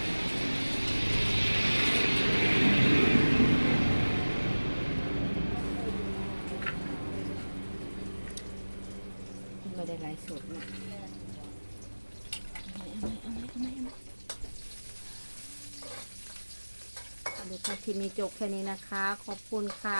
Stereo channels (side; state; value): both; inverted; correlation -1.00